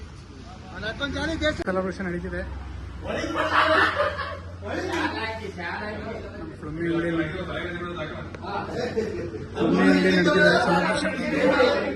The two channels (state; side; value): identical; both; correlation 1.00